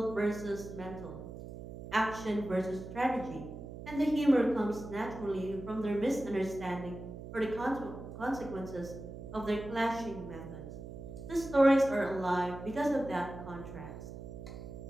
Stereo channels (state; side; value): noise; right; hum, 11 dB below the sound